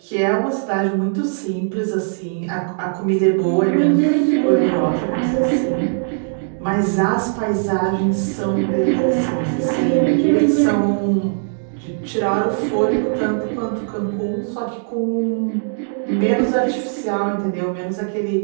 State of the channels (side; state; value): left; silent; digital silence